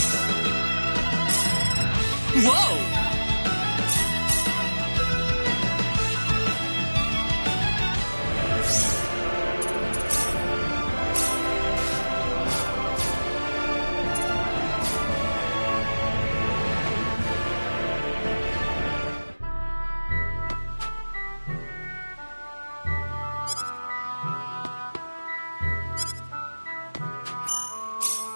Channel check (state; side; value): inverted; both; correlation -1.00